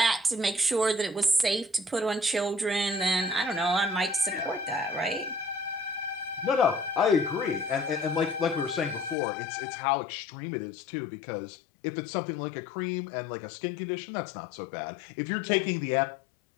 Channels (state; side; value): drops out; right; at 9.2 s